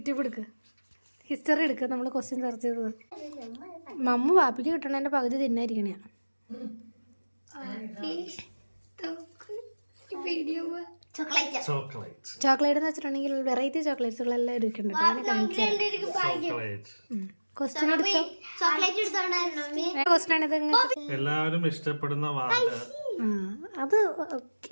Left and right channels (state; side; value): inverted; both; correlation -1.00